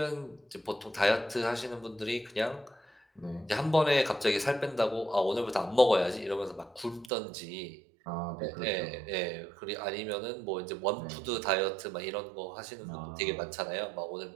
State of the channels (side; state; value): left; drops out; at 7.1 s